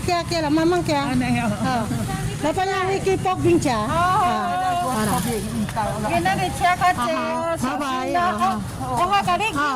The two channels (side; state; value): both; identical; correlation 1.00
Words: Kiara. Mamang Kiara. Ano yan? Napanya Wiki Pok Bincha. Para. Ginari siya kasi. Bye-bye. Oha ka rin.